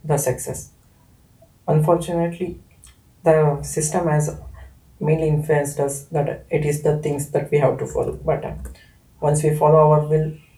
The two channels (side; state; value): both; identical; correlation 1.00